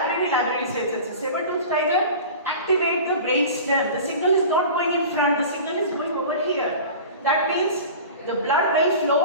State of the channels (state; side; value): inverted; both; correlation -0.36